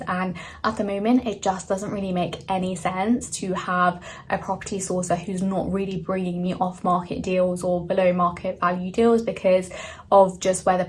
and at the moment it just doesn't really make any sense to have a property sourcer who's not really bringing me off market deals or below market value deals because of just where the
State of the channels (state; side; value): identical; both; correlation 1.00